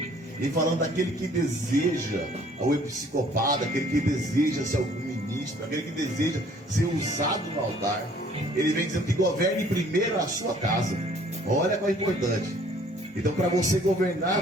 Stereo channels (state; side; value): normal; both; correlation 0.57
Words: e falando daquele que deseja, o episcopado, aquele que deseja ser algum ministro, aquele que deseja ser usado no altar, ele vem dizendo que governe primeiro a sua casa. Olha qual é importante. Então, para você